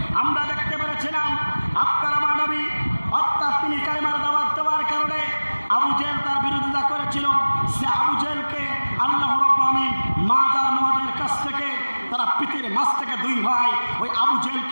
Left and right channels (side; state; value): both; inverted; correlation -1.00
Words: আমরা দেখতে পেরেছিলাম আপনার আমার নবী অর্থাৎ তিনি কালেমার দাওয়াত দেওয়ার কারণে আবু জেহেল তার বিরোধিতা করেছিল, সে আবু জেহেলকে আল্লাহ রাব্বুল আলামিন মাদ আর মুআদের কাছ থেকে তারা পৃথিবীর মাঝ থেকে দুই ভাই ওই আবু